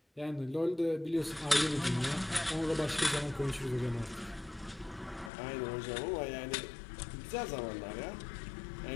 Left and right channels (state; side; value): drops out; right; at 5.3 s